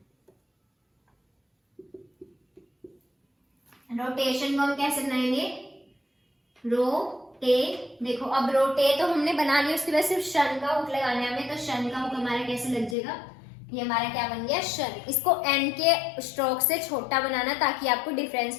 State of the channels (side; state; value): right; drops out; at 13.0 s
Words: रोटेशन को हम कैसे बनाएंगे रोटे, देखो अब रोटे तो हमने बना लिया, उसके बाद सिर्फ शन का हुक लगाना है हमें, तो शन का हुक हमारा कैसे लग जाएगा, ये हमारा क्या बन गया शन। इसको एन के स्ट्रोक से छोटा बनाना ताकि आपको डिफरेंस